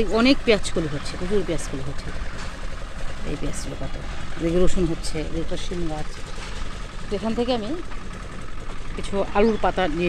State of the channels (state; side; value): identical; both; correlation 1.00